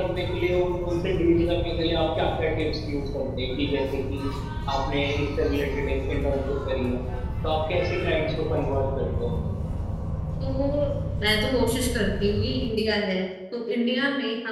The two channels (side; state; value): both; identical; correlation 1.00